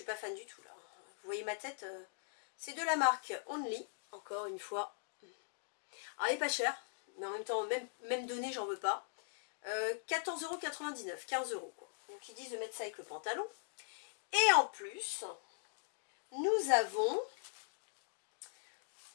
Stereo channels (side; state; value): right; silent; digital silence